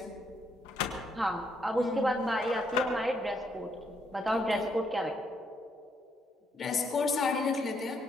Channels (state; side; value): normal; both; correlation 0.74